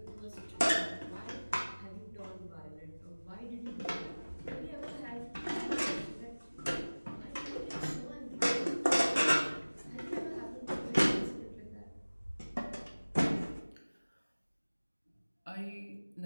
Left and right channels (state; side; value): inverted; both; correlation -1.00